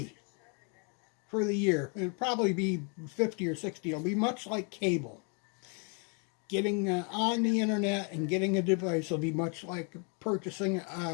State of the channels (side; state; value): right; quieter; 36.9 dB